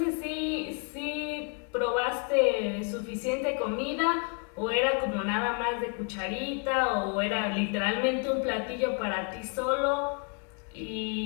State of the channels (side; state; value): right; quieter; 37.2 dB